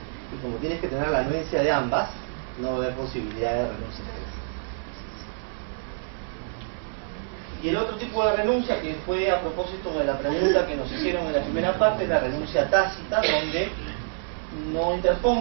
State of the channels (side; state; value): left; silent; 60 dB below the other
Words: Y como tienes que tener la anuencia de ambas, no va a haber posibilidad de renuncia. Y el otro tipo de renuncia, que fue a propósito de la pregunta que nos hicieron en la primera parte, es la renuncia tácita, donde no